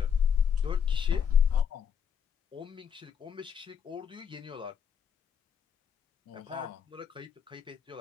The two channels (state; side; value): quieter; right; 7.7 dB